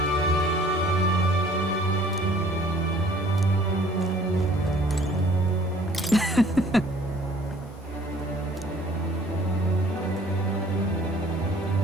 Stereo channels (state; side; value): normal; both; correlation 0.55